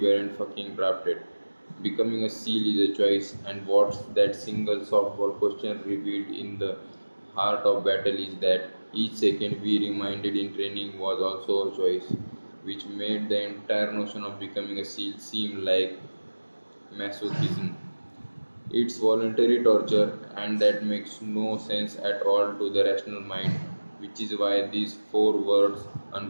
fucking drafted. Becoming a SEAL is a choice, and what's that single softball question revealed in the heart of battle is that each second we reminded in training was also a choice, which made the entire notion of becoming a SEAL seem like masochism. It's voluntary torture, and that makes no sense at all to the rational mind, which is why these four words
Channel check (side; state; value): both; inverted; correlation -1.00